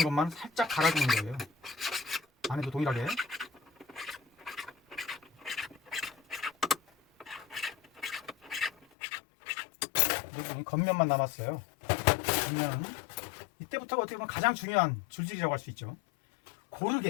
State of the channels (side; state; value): right; drops out; at 8.8 s